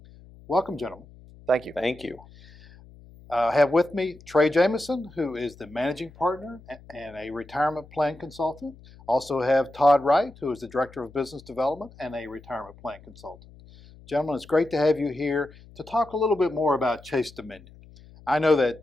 Welcome, gentlemen. Thank you. Thank you. I have with me Trey Jamison, who is the Managing Partner and a retirement plan consultant. Also have Todd Wright, who is the Director of Business Development and a retirement plan consultant. Gentlemen, it's great to have you here to talk a little bit more about Chase Dominion. I know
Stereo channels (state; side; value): noise; left; hum, 22 dB below the sound